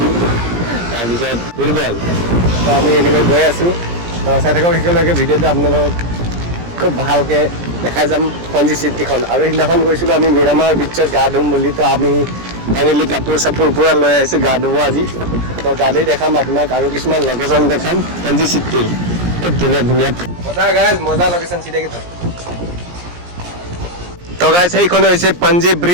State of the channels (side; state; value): left; late; 17 ms